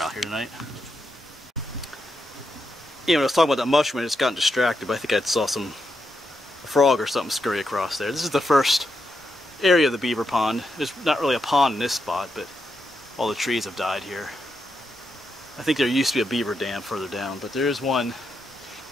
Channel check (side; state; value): both; normal; correlation 0.84